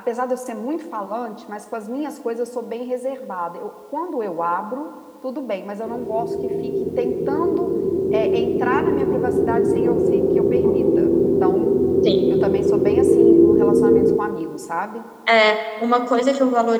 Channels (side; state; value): both; identical; correlation 1.00